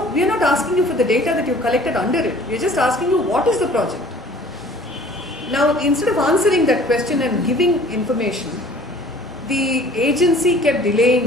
we are not asking you for the data that you've collected under it, we are just asking you what is the project. Now, instead of answering that question and giving information, the agency kept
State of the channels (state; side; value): normal; both; correlation 0.51